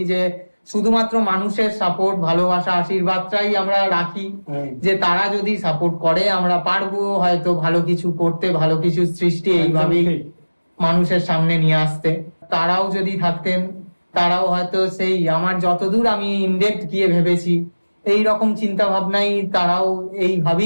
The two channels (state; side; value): inverted; both; correlation -1.00